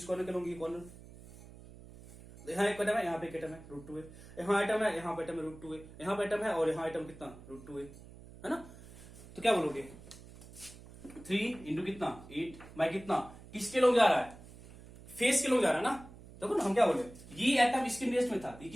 कॉर्नर के लोगे, कॉर्नर यहाँ एक एटम है, यहाँ पे एक एटम है रूट 2a, यहाँ एटम है, यहाँ पे एटम है रूट 2a, यहाँ पे एटम है और यहाँ एटम कितना रूट 2a है ना। तो क्या बोलोगे 3 इंटू कितना 8 बाय कितना, किसके लोग जा रहा है, फेस के लोग जा रहा है ना। देखो ना हम क्या बोले, ये एटम इसके नियरेस्ट में था, ये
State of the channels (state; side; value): noise; right; hum, 18 dB below the sound